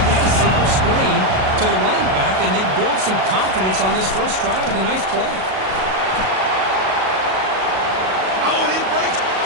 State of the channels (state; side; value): late; left; 37 ms